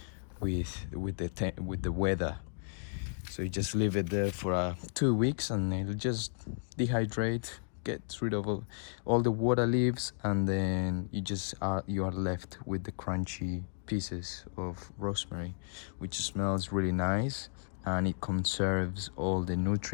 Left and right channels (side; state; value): right; silent; digital silence